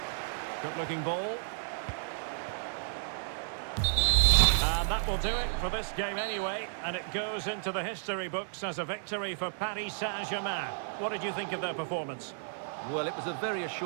Good-looking ball. And that will do it for this game anyway, and it goes into the history books as a victory for Paris Saint-Germain. What did you think of their performance? Well, it was a very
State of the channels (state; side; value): silent; left; 56 dB below the other